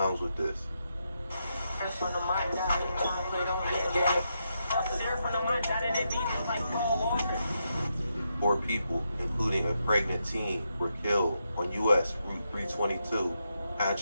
with this. 4 people, including a pregnant teen, were killed on U.S. Route 322,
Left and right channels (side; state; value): both; inverted; correlation -0.83